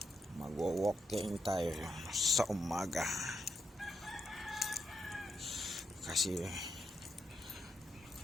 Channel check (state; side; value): normal; both; correlation 0.82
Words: Mag-walking tayo sa umaga. Kasi